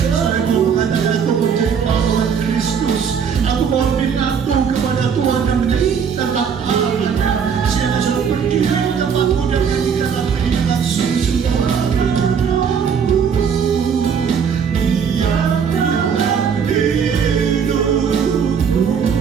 mau mengatakan aku menjadi pahlawan Kristus, aku mau lebih patuh kepada Tuhan dan menjadi tetap pahlawannya. Siapa sudah berdiri di tempatku dan nyanyikan lagu ini dengan sungguh-sungguh. Dia dalam hidupku,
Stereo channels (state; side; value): quieter; left; 6.9 dB